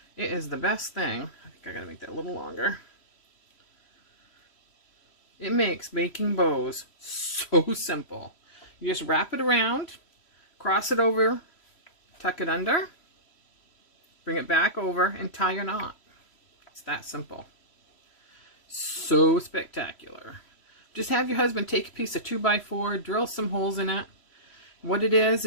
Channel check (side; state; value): right; late; 3.1 ms